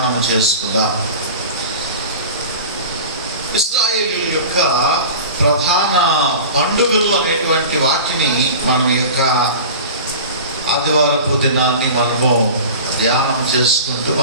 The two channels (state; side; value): inverted; both; correlation -0.36